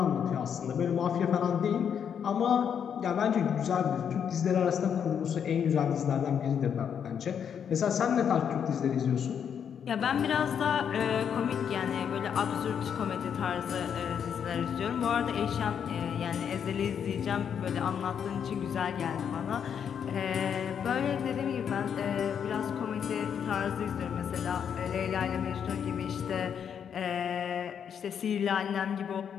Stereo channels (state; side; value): quieter; right; 7.9 dB